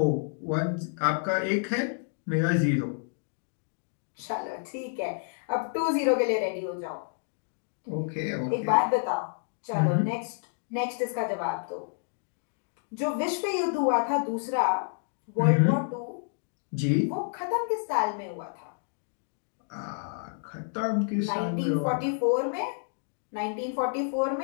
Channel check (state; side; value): silent; right; digital silence